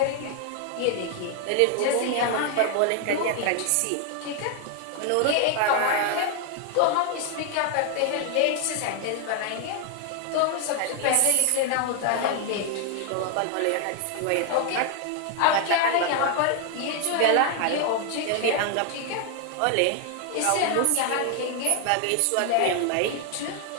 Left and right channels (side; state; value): both; different; correlation 0.00